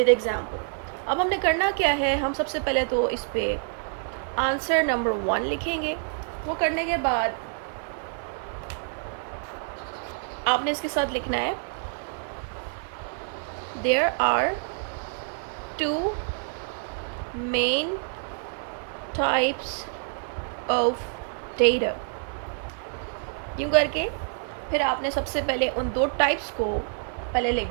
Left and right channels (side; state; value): left; silent; 60 dB below the other